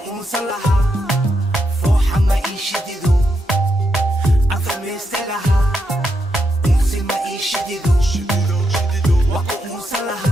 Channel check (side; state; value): both; normal; correlation 0.82